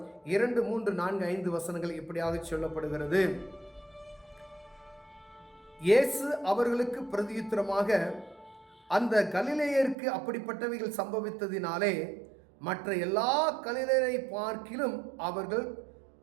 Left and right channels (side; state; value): left; drops out; at 10.0 s